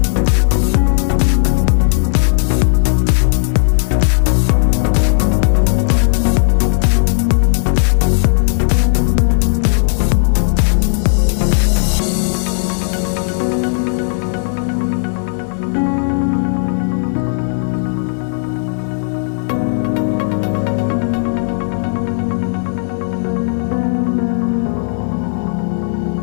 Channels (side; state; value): right; silent; digital silence